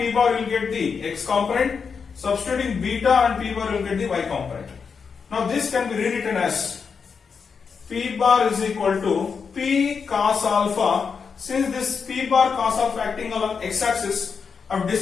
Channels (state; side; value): quieter; right; 5.8 dB